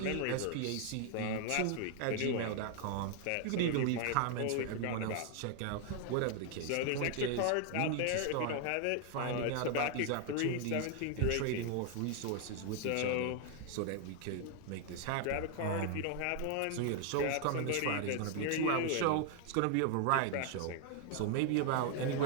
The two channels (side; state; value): both; different; correlation 0.00